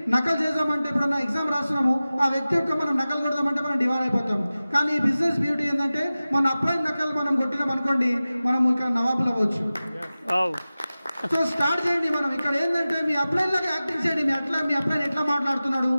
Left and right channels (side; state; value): both; inverted; correlation -0.96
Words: నకలు చేద్దామంటే ఎప్పుడన్నా ఎగ్జామ్ రాస్తున్నాము ఆ వ్యక్తి యొక్క మనం నకలు కొడదామంటే మనం డివైడ్ అయిపోతాం. కానీ ఈ బిజినెస్ బ్యూటీ ఏంటంటే మన అప్లైన్ నకలు మనం కొట్టినాం అనుకోండి, మనం ఇక్కడ నవాబులు అవ్వచ్చు. సో స్టార్ట్ చేయండి. మనం ఇక్కడ ఏంటంటే మీ అప్లైన్ లాగా యాక్టింగ్ చేయండి. మీ అప్లైన్ ఎట్లా మాట్లాడుతున్నాడు,